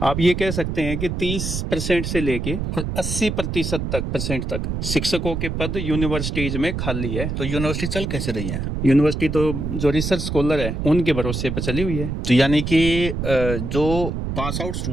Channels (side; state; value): right; noise; rumble, 3 dB below the sound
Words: आप ये कह सकते हैं कि 30% से लेके 80% तक शिक्षकों के पद यूनिवर्सिटीज में खाली है। तो यूनिवर्सिटी चल कैसे रही है? यूनिवर्सिटी तो जो रिसर्च स्कॉलर है उनके भरोसे पर चली हुई है। तो यानी कि जो पास आउट